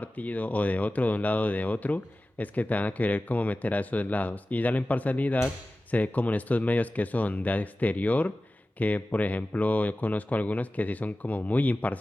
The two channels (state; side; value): normal; both; correlation 0.96